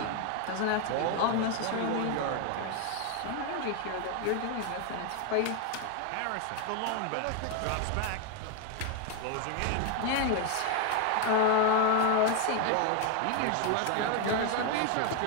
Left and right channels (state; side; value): different; both; correlation 0.01